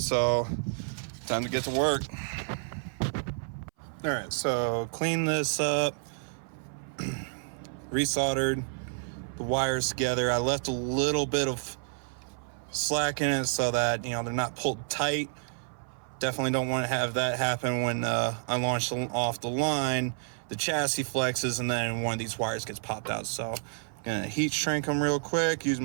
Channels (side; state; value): left; silent; 58 dB below the other